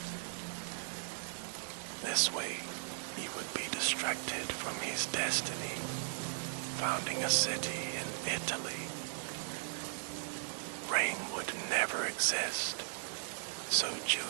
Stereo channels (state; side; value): silent; left; 53 dB below the other